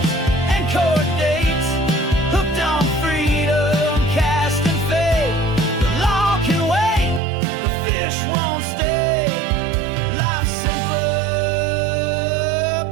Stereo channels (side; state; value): left; drops out; at 7.2 s